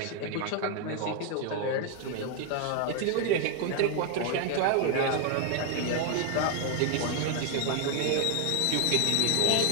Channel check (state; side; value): different; both; correlation 0.01